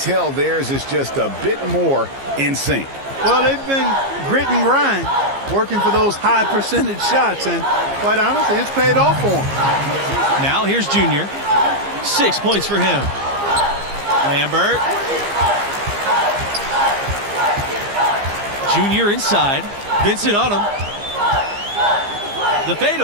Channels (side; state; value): left; late; 15 ms